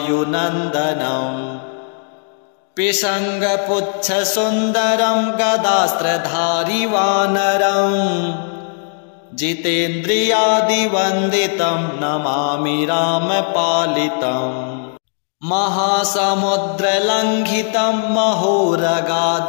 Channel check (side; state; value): right; silent; 62 dB below the other